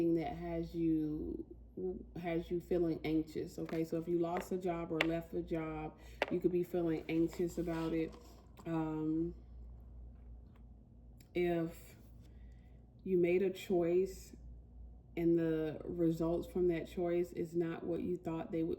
that has you feeling anxious, okay? So if you lost a job or left a job, you could be feeling anxious about it. If you made a choice and the results from that choice is not what you thought they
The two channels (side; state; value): both; identical; correlation 1.00